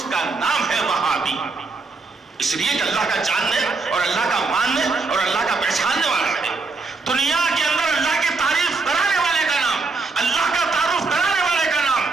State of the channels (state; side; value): quieter; left; 4.0 dB